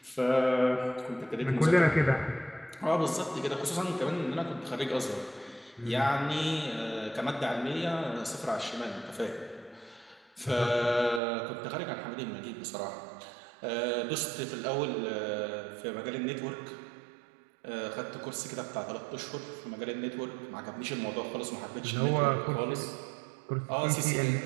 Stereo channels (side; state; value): left; drops out; at 11.2 s